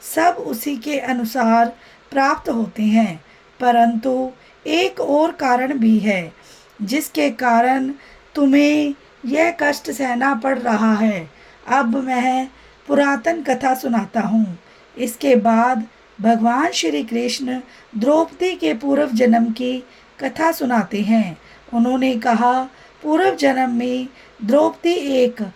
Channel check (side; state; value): both; identical; correlation 1.00